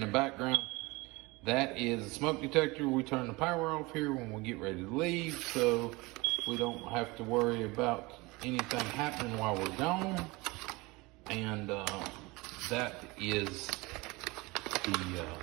the background, that is a smoke detector. We turn the power off here when we get ready to leave, so we don't have to worry about anything happening while we're gone. And that is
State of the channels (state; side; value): quieter; left; 23.6 dB